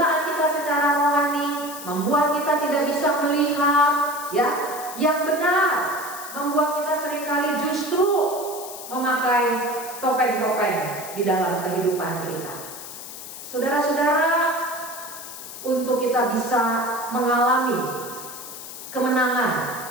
kita secara rohani membuat kita tidak bisa melihat, ya, yang benar, membuat kita seringkali justru memakai topeng-topeng di dalam kehidupan kita. Saudara-saudara, untuk kita bisa mengalami kemenangan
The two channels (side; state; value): left; noise; hiss, 12 dB below the sound